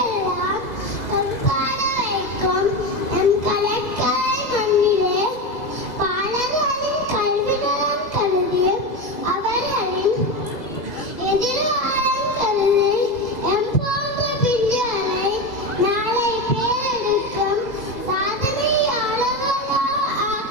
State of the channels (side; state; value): right; late; 2.0 ms